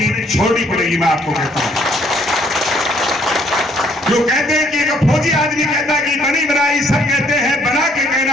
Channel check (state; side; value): normal; both; correlation 0.65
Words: पड़ेगी, मैं आपको कहता हूं। जो कहते हैं कि एक फौजी आदमी कहता है कि बनी बनाई सब कहते हैं, बना के